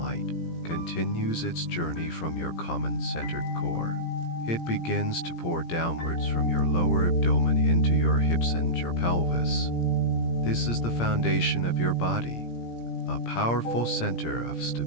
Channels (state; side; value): late; right; 17 ms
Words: continues its journey from your common-centered core. It begins to pour downwards from your lower abdomen into your hips and your pelvis. This is the foundation of your body, a powerful center of